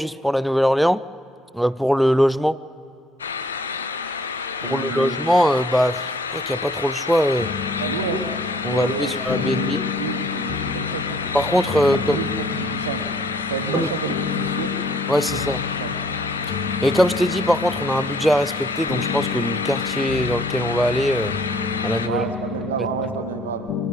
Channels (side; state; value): both; normal; correlation 0.62